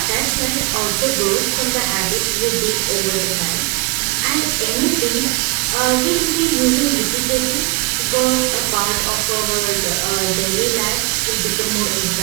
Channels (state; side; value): quieter; left; 26.5 dB